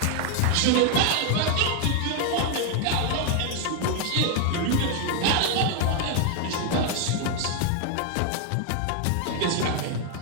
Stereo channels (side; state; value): both; different; correlation 0.00